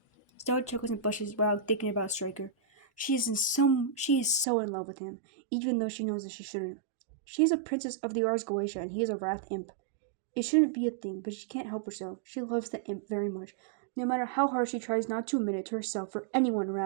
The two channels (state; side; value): drops out; left; at 4.5 s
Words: Stella chuckles and blushes while thinking about Striker. She is so in love with him, even though she knows that she shouldn't. She is a princess of the Ars Goetia, and he is a wrath imp. It shouldn't be a thing, but she can't help herself. She loves the imp very much, no matter how hard she tries not to admit it to herself or anyone